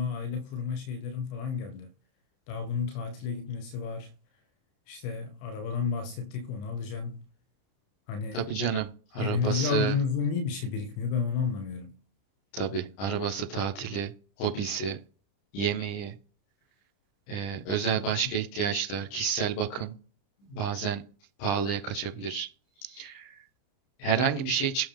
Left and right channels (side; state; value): right; late; 30 ms